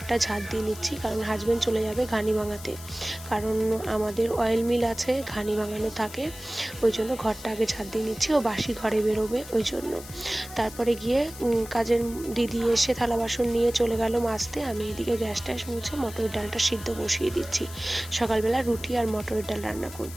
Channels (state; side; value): noise; left; hiss, 15 dB below the sound